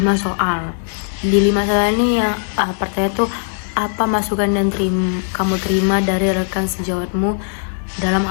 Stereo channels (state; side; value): silent; right; digital silence